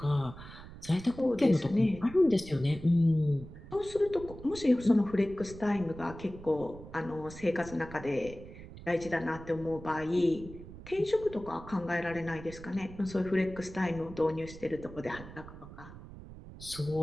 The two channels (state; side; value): noise; right; rumble, 15 dB below the sound